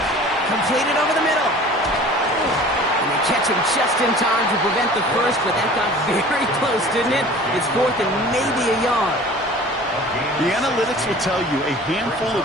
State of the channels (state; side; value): normal; both; correlation 0.44